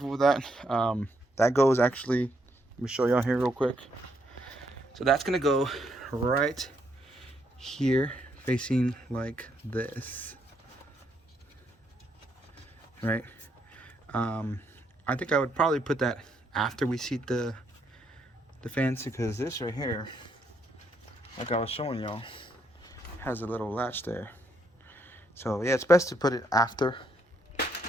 with that. That goes actually, let me show y'all here real quick. So that's gonna go right here, facing like this, right? I think I would probably put that after we seat the fans, because this right here, like I was showing y'all, has a little latch there. So yeah, it's best to put it after.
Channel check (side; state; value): both; normal; correlation 0.75